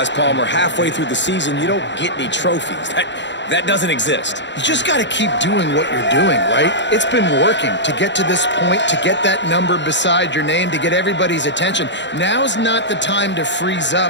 Palmer, halfway through the season, you don't get any trophies. That doesn't exist. You just got to keep doing what you're doing, right? It's been working to get to this point, to get that number beside your name, to get everybody's attention. Now's not the time to freeze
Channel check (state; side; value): late; right; 0.52 ms